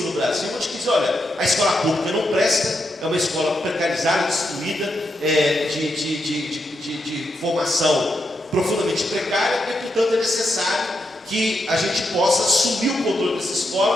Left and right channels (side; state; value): both; normal; correlation 0.83